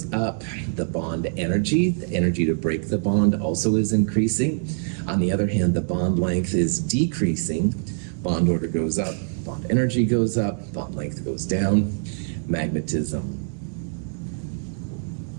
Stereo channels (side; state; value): left; silent; 62 dB below the other